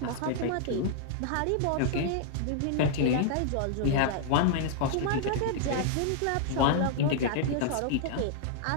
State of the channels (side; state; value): both; different; correlation 0.00